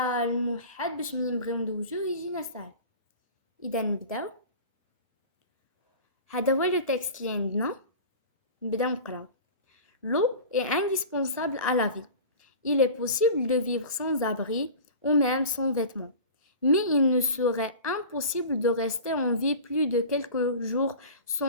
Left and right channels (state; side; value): inverted; both; correlation -0.37